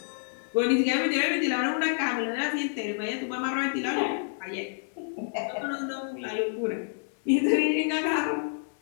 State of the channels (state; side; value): silent; right; digital silence